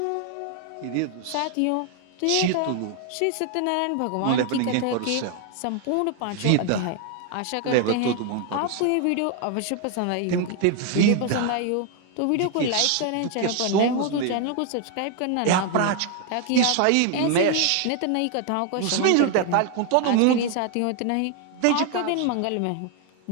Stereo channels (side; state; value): both; different; correlation 0.00